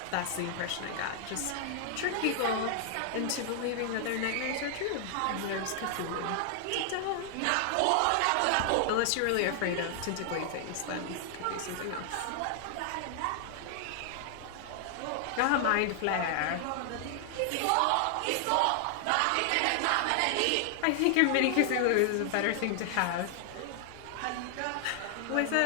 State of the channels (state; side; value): different; both; correlation 0.00